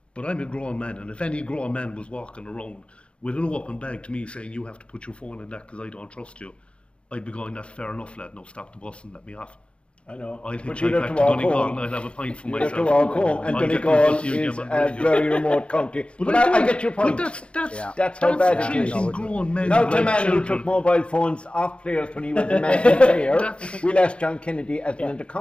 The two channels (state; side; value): late; right; 0.058 ms